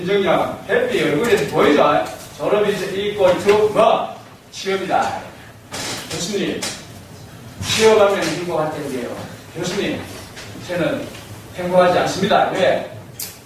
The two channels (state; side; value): identical; both; correlation 1.00